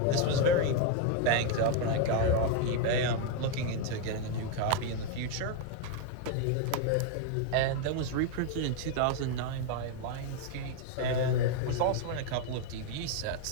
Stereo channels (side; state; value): both; different; correlation 0.01